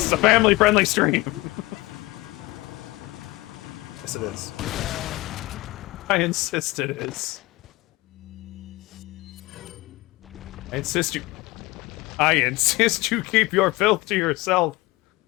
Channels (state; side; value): quieter; right; 20.8 dB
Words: is a family-friendly stream. Yes, it is. I insist it is. I insist you keep your filth to yourself.